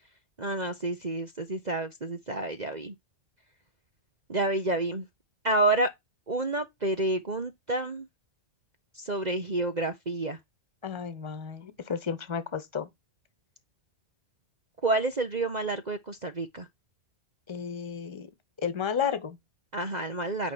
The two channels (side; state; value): left; late; 2.0 ms